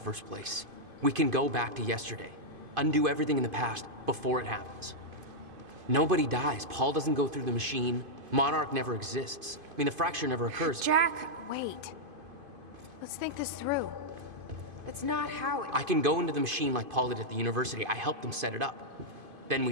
place? We can go back to yesterday, undo everything in the past before it happens. Nobody dies. Paul doesn't go through the machine. Monarch never exists. I mean, the fracture never occurs. Jack, wait. Let's think this through. That's not how it... I can go into the machine like Paul did at the university. I helped them set it up. Then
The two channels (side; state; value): left; late; 2.5 ms